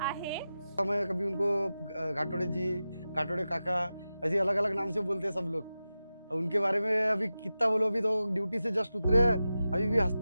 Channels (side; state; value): both; inverted; correlation -0.93